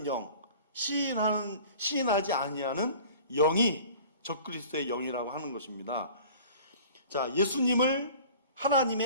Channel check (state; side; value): inverted; both; correlation -0.45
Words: 영, 시인하지 아니하는 영이 적그리스도의 영이라고 하는 것입니다. 자, 예수님을